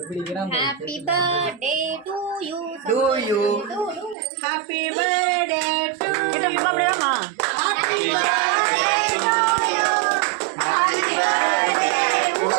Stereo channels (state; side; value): drops out; left; at 4.2 s